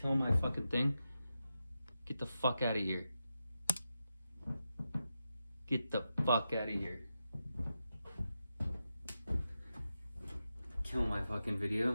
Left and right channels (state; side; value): inverted; both; correlation -0.89